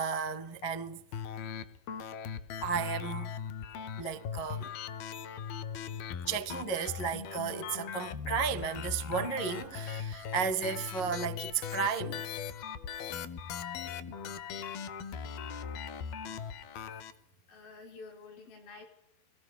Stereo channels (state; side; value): late; right; 11 ms